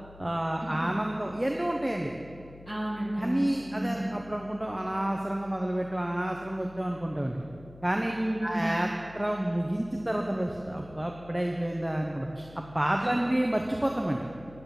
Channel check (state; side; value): noise; left; hum, 19 dB below the sound